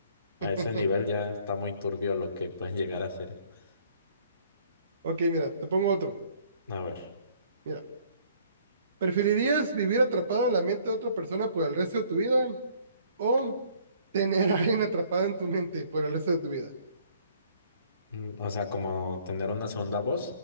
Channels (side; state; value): both; inverted; correlation -0.60